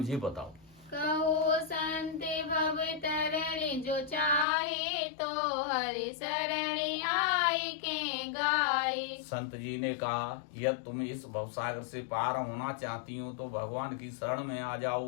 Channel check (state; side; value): drops out; right; at 4.5 s